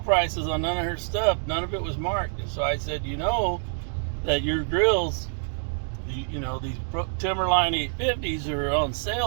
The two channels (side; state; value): left; silent; digital silence